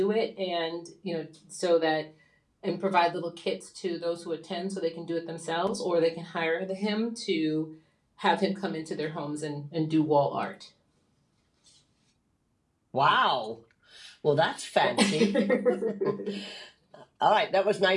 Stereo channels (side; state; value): both; identical; correlation 1.00